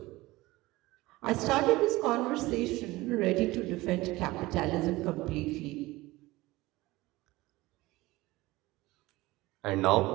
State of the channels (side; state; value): left; quieter; 19.6 dB